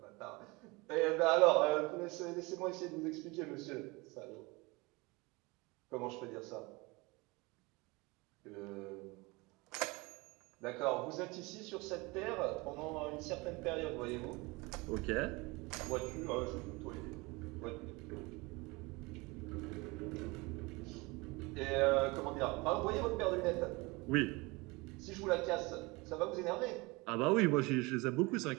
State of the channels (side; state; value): left; quieter; 24.9 dB